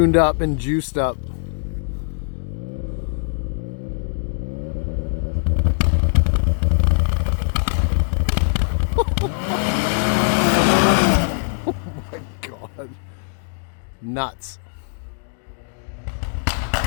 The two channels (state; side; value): silent; right; digital silence